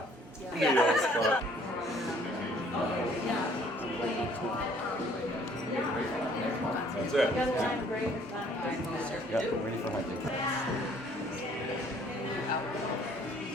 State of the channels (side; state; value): both; normal; correlation 0.59